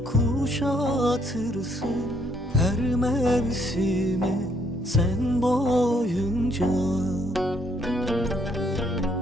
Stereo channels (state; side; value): normal; both; correlation 0.69